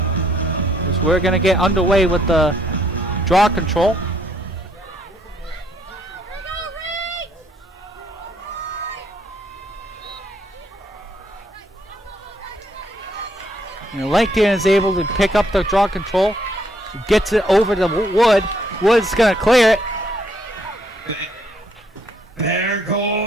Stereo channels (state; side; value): normal; both; correlation 0.70